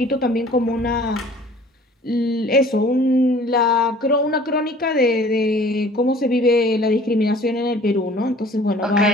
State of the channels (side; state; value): both; normal; correlation 0.50